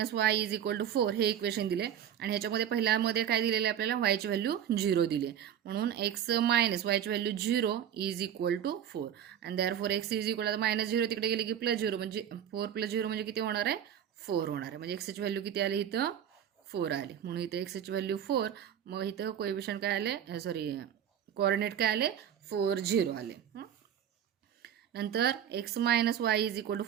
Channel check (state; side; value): quieter; left; 9.5 dB